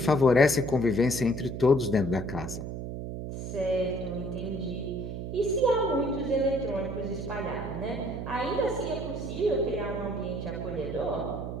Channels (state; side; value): noise; right; hum, 6 dB below the sound